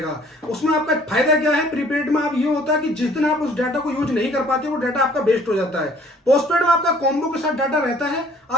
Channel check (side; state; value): both; normal; correlation 0.55